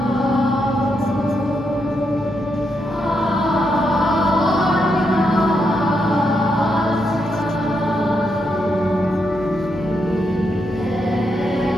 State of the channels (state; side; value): normal; both; correlation 0.81